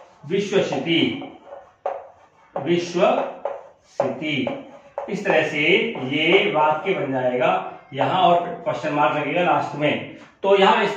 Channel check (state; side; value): identical; both; correlation 1.00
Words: विश्वसिति, विश्वसिति। इस तरह से ये वाक्य बन जाएगा यहाँ, और क्वेश्चन मार्क लगेगा लास्ट में। तो यहाँ इस